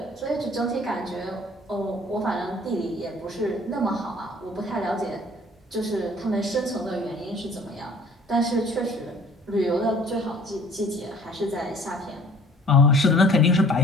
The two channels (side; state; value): both; normal; correlation 0.53